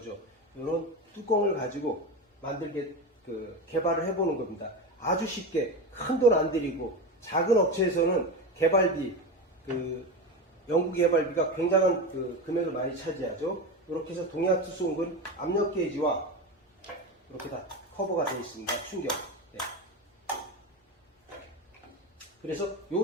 이런 뚜껑을 가지고 만들게 개발을 해보는 겁니다. 아주 쉽게 큰 돈 안 들이고, 작은 업체에서는 개발비, 연구 개발비가 굉장한 금액을 많이 차지하죠. 이렇게 해서 동양투수공구는 압력 게이지와 이렇게 다 커버가 되어 있습니다. 충격. 네. 그래서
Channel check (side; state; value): both; normal; correlation 0.21